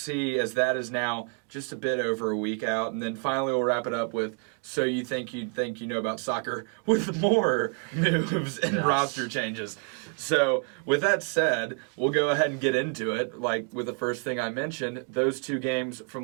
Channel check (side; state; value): left; quieter; 39.3 dB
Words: as that is now just a bit over a week out. And then finally we'll wrap it up with So You Think You Know About Soccer with more moves and roster changes. So with that said, we'll go ahead and get into it. Like with the first thing I mentioned, those two games